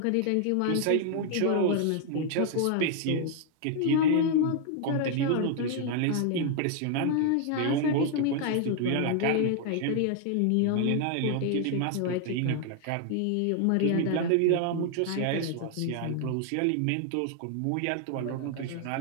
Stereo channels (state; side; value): different; both; correlation 0.00